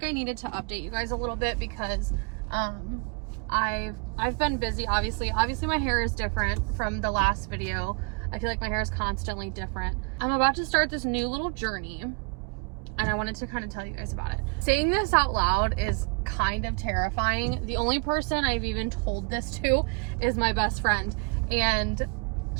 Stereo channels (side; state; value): left; quieter; 33.8 dB